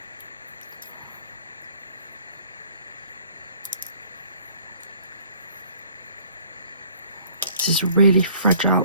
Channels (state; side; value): inverted; both; correlation -0.56